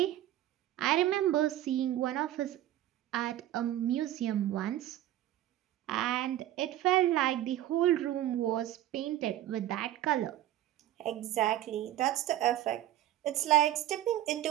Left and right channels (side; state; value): left; quieter; 13.2 dB